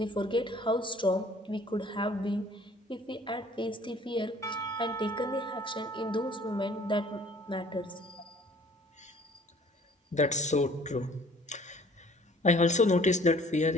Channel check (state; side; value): normal; both; correlation 0.54